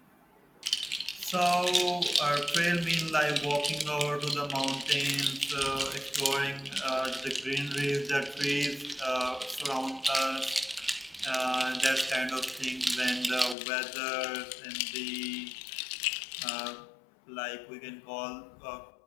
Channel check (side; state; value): right; drops out; at 13.6 s